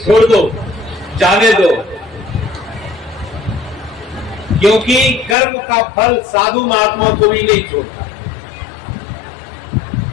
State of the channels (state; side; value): drops out; right; at 5.4 s